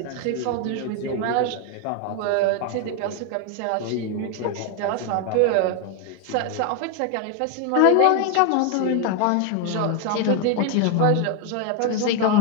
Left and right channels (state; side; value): different; both; correlation 0.01